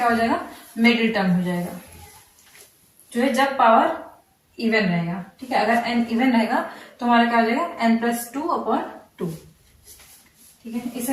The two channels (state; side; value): identical; both; correlation 1.00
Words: हो जाएगा, मिडिल टर्म हो जाएगा, जो है जब पावर इवन रहेगा। ठीक है, अगर n इवन रहेगा तो हमारा क्या हो जाएगा, n+2/2। ठीक है,